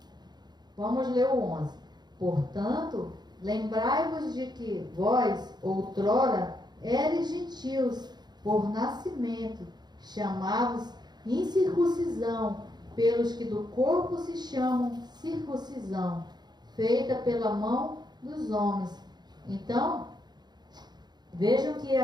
Vamos ler o 11. Portanto, lembrai-vos de que vós, outrora, eres gentios, por nascimento, chamados incircuncisão, pelos que do corpo se chamam circuncisão, feita pela mão dos homens. Então, vejam que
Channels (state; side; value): late; left; 0.20 ms